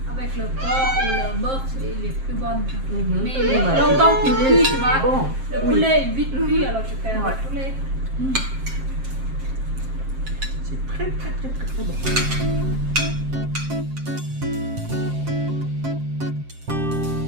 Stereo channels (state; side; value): late; left; 7.5 ms